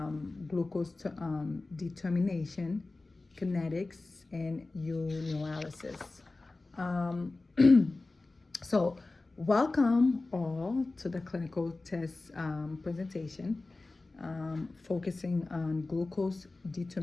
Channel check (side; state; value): right; quieter; 3.3 dB